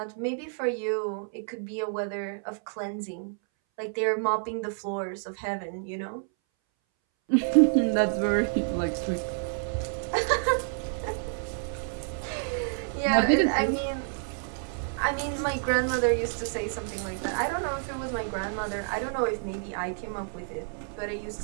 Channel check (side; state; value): left; silent; 59 dB below the other